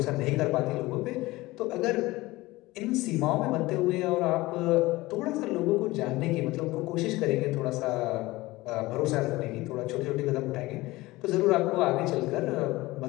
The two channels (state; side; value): quieter; right; 19.8 dB